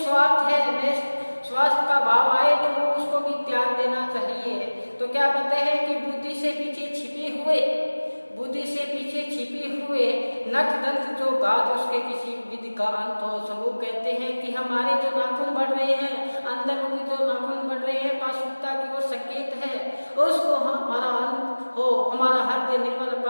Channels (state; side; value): inverted; both; correlation -1.00